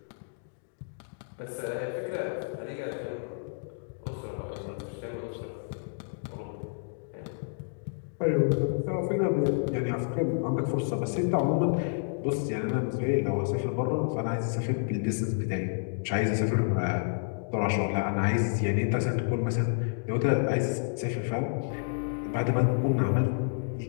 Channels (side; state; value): right; silent; digital silence